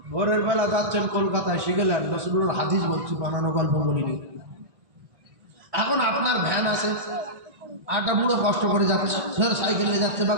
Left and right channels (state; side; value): late; left; 1.6 ms